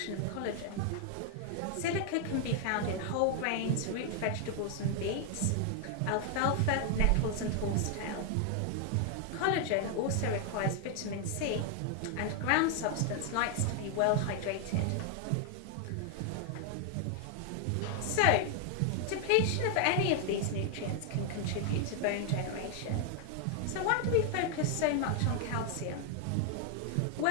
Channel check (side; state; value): both; different; correlation 0.00